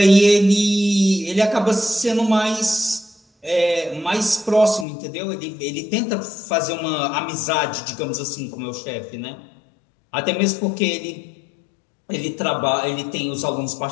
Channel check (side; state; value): right; drops out; at 4.9 s